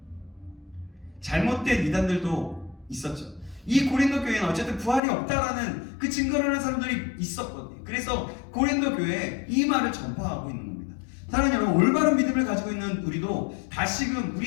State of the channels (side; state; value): right; drops out; at 5.0 s